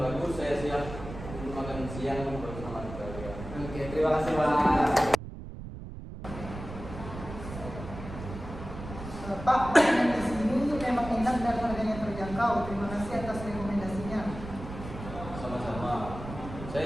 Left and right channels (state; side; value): noise; right; rumble, 10 dB below the sound